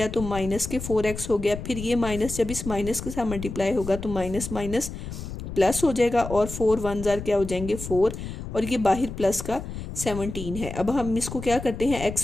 तो माइनस के 4x हो गया। फिर ये माइनस जब इस माइनस के साथ मल्टीप्लाई होगा तो माइनस माइनस प्लस हो जाएगा और 4 1 जार क्या हो जाएंगे 4, और ये बाहर प्लस का 17 है। अब हम इसको क्या करते हैं,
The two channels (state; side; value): noise; left; rumble, 8 dB below the sound